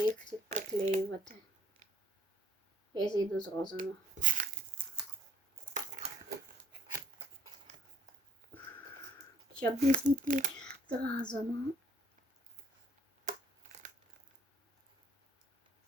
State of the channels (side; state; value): both; normal; correlation 0.61